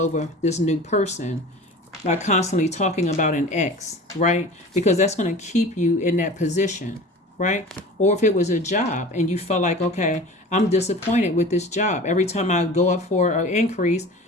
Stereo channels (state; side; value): normal; both; correlation 0.38